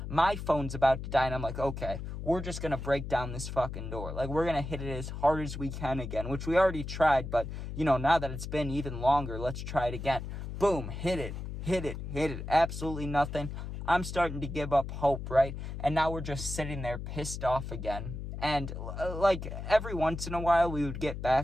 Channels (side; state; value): left; noise; hum, 7 dB below the sound